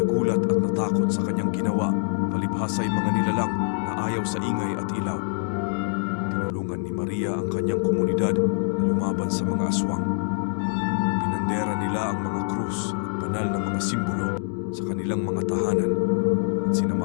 at natakot sa kanyang ginawa, palibhasa ay mga nilalang na ayaw sa ingay at ilaw. Tinulungan ni Maria ang kanyang komunidad na lumaban sa mga aswang. Pinandera nila ang mga krus at banal na mga simbolo sa kanilang mga tahanan at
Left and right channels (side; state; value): right; silent; digital silence